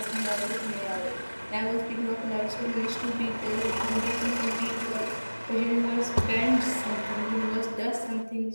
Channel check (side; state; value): both; inverted; correlation -1.00